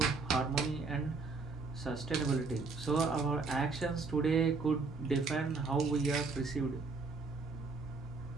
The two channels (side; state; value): left; quieter; 4.2 dB